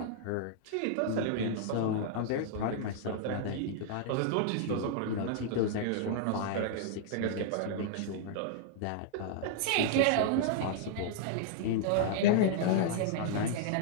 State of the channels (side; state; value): both; different; correlation -0.01